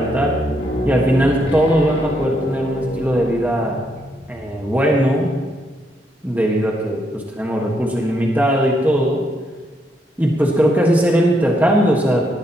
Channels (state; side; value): normal; both; correlation 0.76